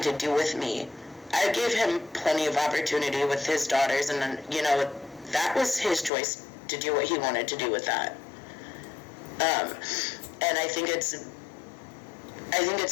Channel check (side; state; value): right; drops out; at 6.1 s